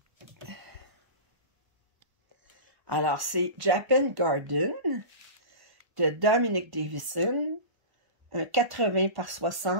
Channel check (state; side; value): late; left; 1.1 ms